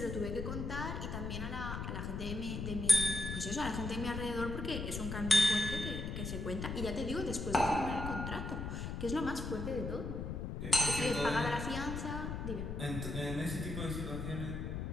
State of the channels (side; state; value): left; noise; rumble, 4 dB below the sound